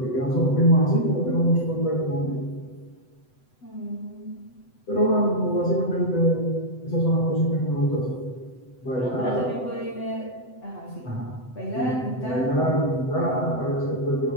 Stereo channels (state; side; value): late; right; 7.9 ms